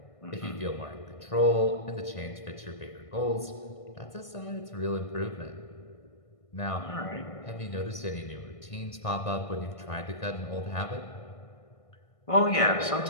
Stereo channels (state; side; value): late; right; 1.6 ms